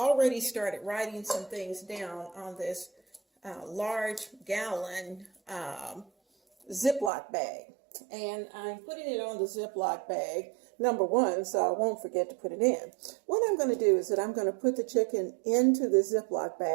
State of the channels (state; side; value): drops out; left; at 7.1 s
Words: started writing some things down on this large gallon Ziploc bag. And I'm putting it on the Ziploc bag, number one, so I won't forget to put it in. What I'm going to do is that I'm going to put the chicken into the Ziploc